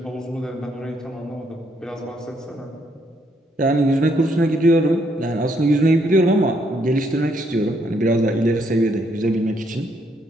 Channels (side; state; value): both; normal; correlation 0.72